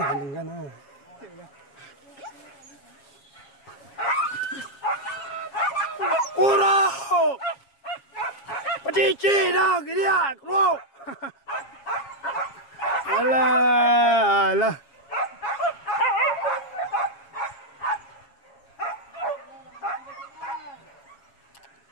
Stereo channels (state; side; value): late; right; 7.3 ms